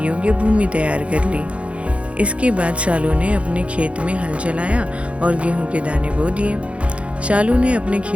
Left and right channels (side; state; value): left; late; 0.062 ms